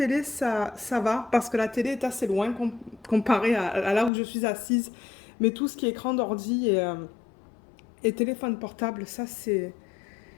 ça va parce que la télé est assez loin comparé à là où je suis assise. Mais tout ce qui est écran d'ordi et téléphone portable, ça, c'est...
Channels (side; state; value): right; drops out; at 4.1 s